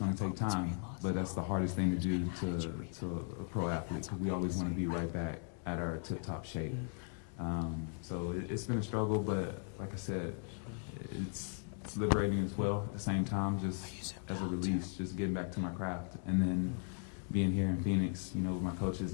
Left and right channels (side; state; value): right; silent; 53 dB below the other